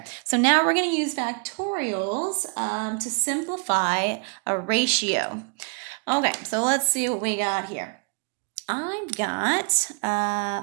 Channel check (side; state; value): left; quieter; 36.3 dB